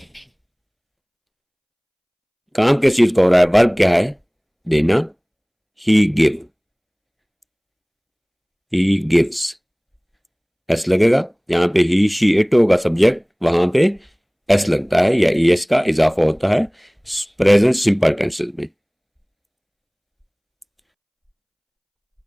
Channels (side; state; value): both; identical; correlation 1.00